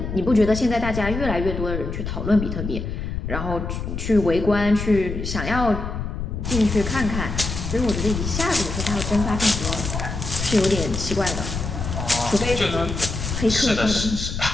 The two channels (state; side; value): noise; left; rumble, 5 dB below the sound